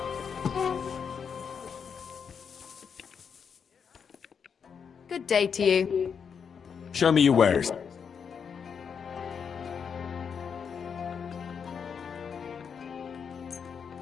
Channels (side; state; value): right; quieter; 6.7 dB